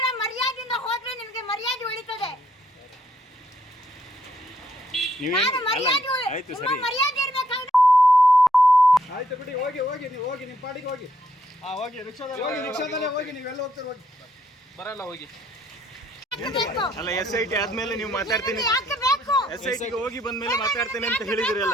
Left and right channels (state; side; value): normal; both; correlation 0.71